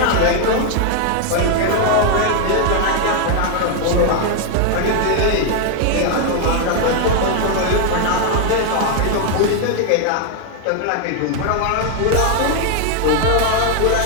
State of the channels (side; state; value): both; different; correlation 0.00